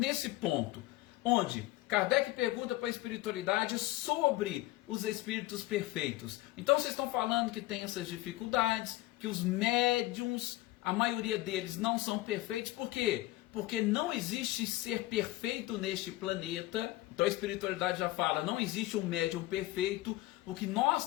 ponto, onde Kardec pergunta para a espiritualidade sobre os espíritos perfeitos. Então vocês estão falando que tem essas dificuldades, que os médiums, a maioria deles não são perfeitos. Por quê? Porque não existe ser perfeito neste planeta. Então a espiritualidade já fala, não existe um médium perfeito. O que nós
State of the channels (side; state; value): right; quieter; 17.8 dB